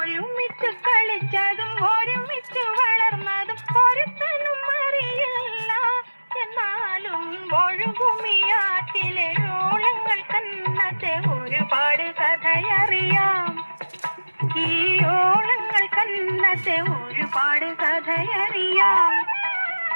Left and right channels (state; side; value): inverted; both; correlation -1.00